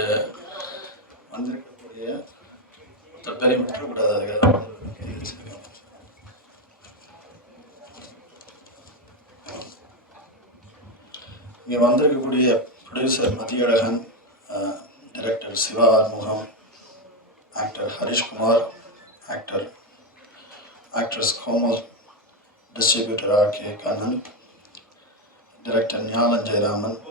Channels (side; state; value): both; normal; correlation 0.09